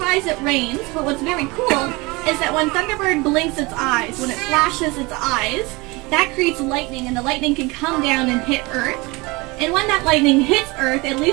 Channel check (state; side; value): quieter; left; 24.8 dB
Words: it rains. But what's very cool is that when Thunderbird blinks its eyes, when it flashes its eyes, that creates lightning, and the lightning can come down and hit Earth. And when that lightning hits Earth, it